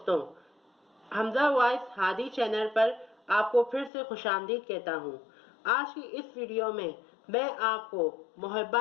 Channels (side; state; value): right; drops out; at 3.9 s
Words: حمزہ وائس ہادی چینل پر آپ کو پھر سے خوش آمدید کہتا ہوں۔ آج کی اس ویڈیو میں آپ کو